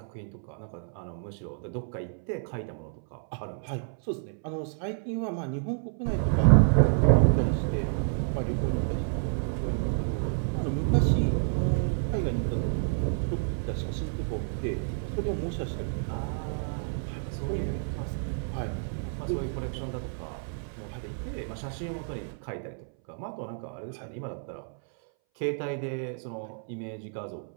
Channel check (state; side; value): silent; left; 58 dB below the other